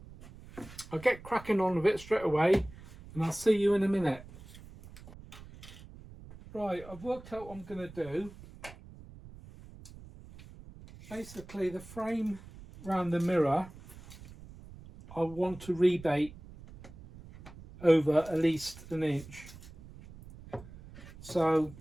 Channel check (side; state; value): right; noise; rumble, 18 dB below the sound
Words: I'll get cracking on with it straight away and I'll see you in a minute. Right, I've worked out what I'm going to do. Basically, the frame around the mirror, I want to rebate over at least an inch. So